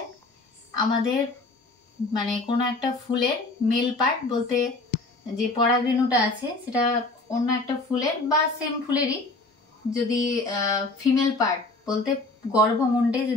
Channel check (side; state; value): right; quieter; 3.2 dB